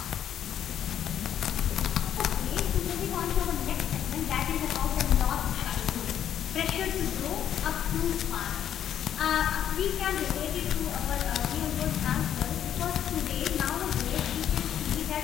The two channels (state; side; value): quieter; right; 10.0 dB